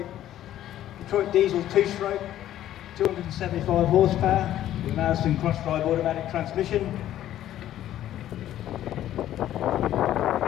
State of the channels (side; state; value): right; quieter; 12.4 dB